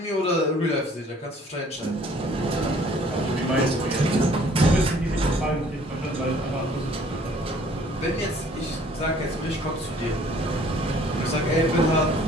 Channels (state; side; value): normal; both; correlation 0.56